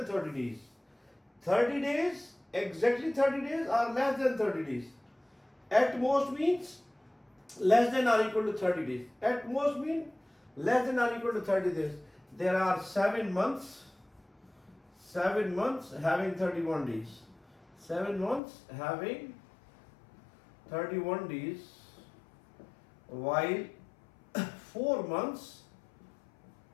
30 days. 30 days, exactly 30 days or less than 30 days. At most means less than or equal to 30 days. At most means less than or equal to 30 days. There are 7 months having 31 days. 7 months having 31 days, while 4 months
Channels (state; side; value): drops out; right; at 18.4 s